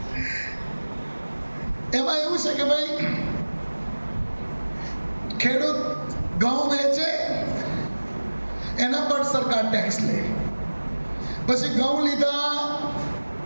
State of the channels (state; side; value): inverted; both; correlation -1.00